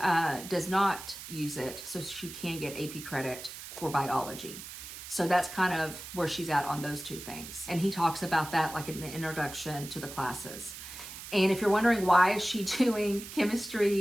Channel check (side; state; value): right; noise; hiss, 12 dB below the sound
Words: does not use it. So she can get AP credit for biology. So that's kind of where she's at on those two things. And he talks about that like in the introduction to the classes. And if you're wondering why is she doing